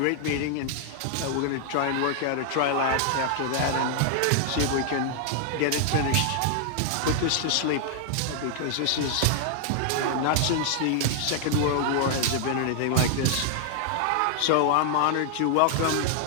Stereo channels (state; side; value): different; both; correlation 0.00